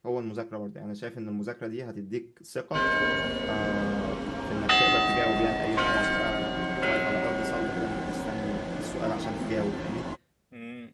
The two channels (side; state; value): both; identical; correlation 1.00